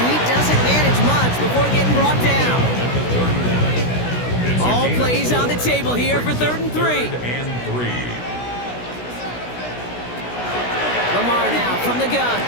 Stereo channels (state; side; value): late; right; 16 ms